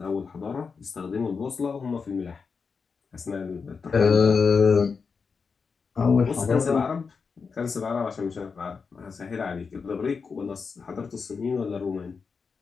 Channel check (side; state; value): right; quieter; 5.3 dB